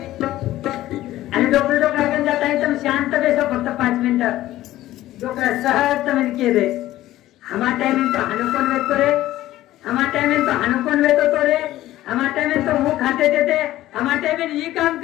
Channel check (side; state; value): right; quieter; 15.0 dB